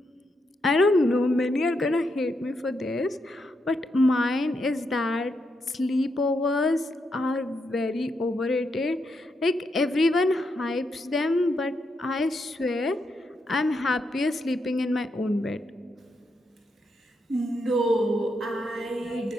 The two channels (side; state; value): both; normal; correlation 0.81